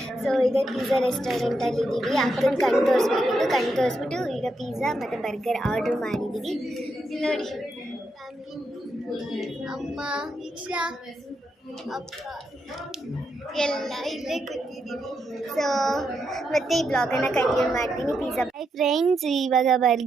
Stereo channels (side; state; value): both; normal; correlation 0.82